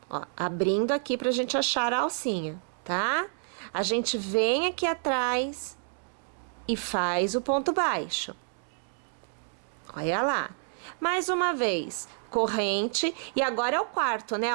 ó, abrindo aqui pra gente achar a alcinha, tá? A gente vem aqui atrás e faz o ponto baixo. Olha lá. Mais uma vez, corrente, e agora é o quarto, né?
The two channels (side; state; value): left; silent; digital silence